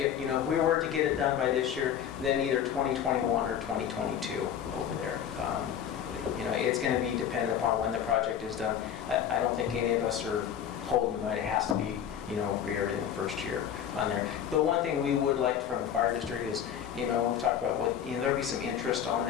we were to get it done by this year, then either 2021 or 2022 over there. It's going to be dependent upon when the project is done. I don't think any of us are holding, but it has to be, everything the first year on there. The one thing we would like from the fire district is, we've talked about there'll be some interest on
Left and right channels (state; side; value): quieter; right; 9.1 dB